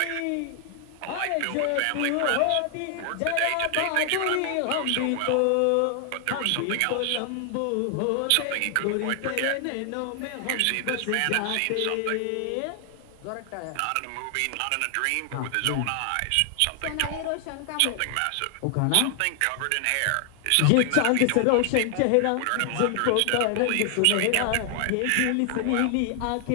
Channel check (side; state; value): both; different; correlation 0.00